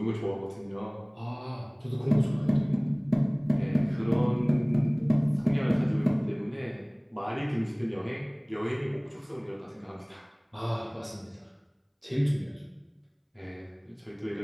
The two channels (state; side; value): identical; both; correlation 1.00